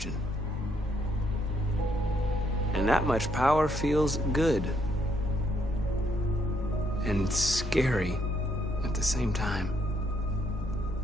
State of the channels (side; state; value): both; normal; correlation 0.72